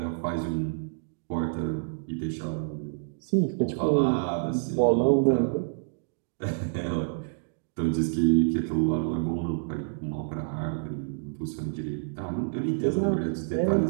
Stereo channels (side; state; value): left; silent; digital silence